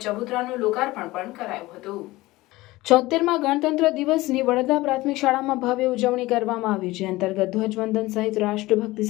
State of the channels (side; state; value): right; quieter; 19.2 dB